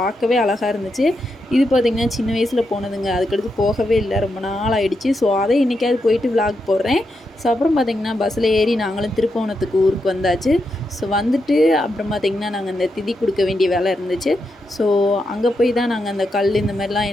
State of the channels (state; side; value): normal; both; correlation 0.84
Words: பார்க்கவே அழகாக இருந்துச்சு. இது பார்த்திங்கன்னா சின்ன வயசில் போனதுங்க. அதுக்கடுத்து போகவே இல்லை, ரொம்ப நாள் ஆகிடுச்சு. ஸோ அதை இன்றைக்காவது போயிட்டு விளாக் போடுறேன். ஸோ அப்புறம் பார்த்திங்கன்னா பஸ்ஸில் ஏறி நாங்களும் திருப்பவனத்துக்கு ஊருக்கு வந்தாச்சு. ஸோ வந்துட்டு அப்புறம் பார்த்திங்கன்னா நாங்கள் அந்த திதி கொடுக்க வேண்டிய வேலை இருந்துச்சு. ஸோ அங்கே போய் தான் நாங்கள் அந்த கல் இந்த மாதிரிலாம்